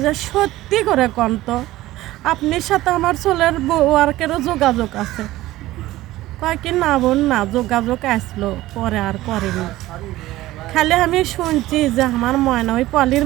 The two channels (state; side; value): quieter; left; 16.6 dB